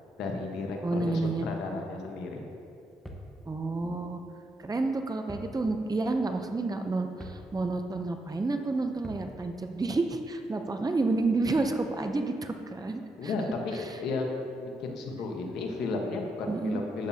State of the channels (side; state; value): both; normal; correlation 0.81